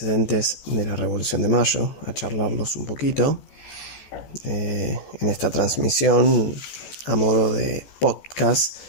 de la Revolución de Mayo, a charlarlos un poquito. En esta transmisión, a modo de podcast,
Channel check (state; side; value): late; right; 14 ms